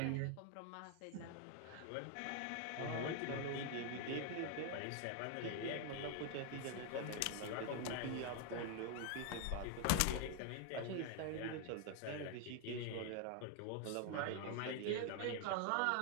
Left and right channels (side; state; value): both; different; correlation 0.00